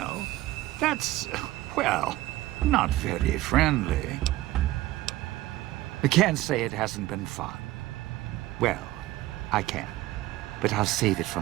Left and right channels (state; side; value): quieter; left; 16.9 dB